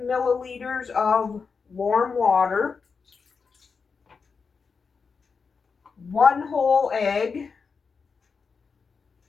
milliliters of warm water, 1 whole egg.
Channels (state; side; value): quieter; right; 5.2 dB